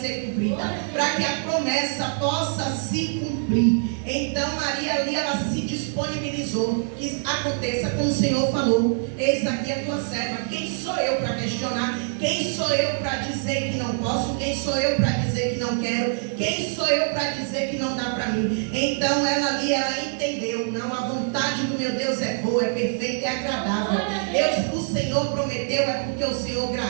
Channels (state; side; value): silent; left; digital silence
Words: cumprida, para que a promessa possa se cumprir. Então Maria ali, ela se disponibilizou, que aconteça como o Senhor falou. Eis aqui a tua serva. Quem sou eu para questionar? Quem sou eu para dizer que não posso? Quem sou eu para dizer que não quero? Quem sou eu para dizer que não dá para mim? Então ela ali, ela entendeu: não, a vontade do meu Deus é boa, é perfeita, é agradável. O Senhor prometeu, é porque o Senhor